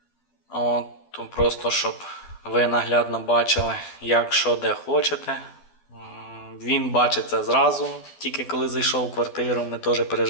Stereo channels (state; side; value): late; right; 12 ms